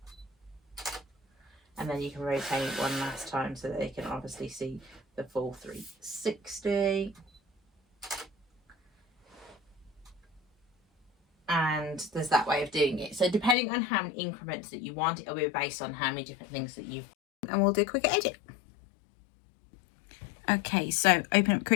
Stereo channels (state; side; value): drops out; right; at 13.6 s